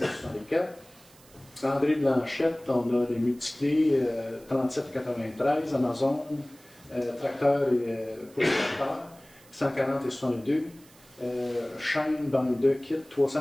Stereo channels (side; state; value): right; noise; hiss, 26 dB below the sound